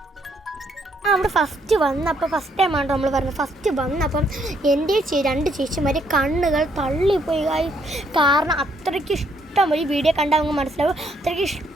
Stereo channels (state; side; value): normal; both; correlation 0.71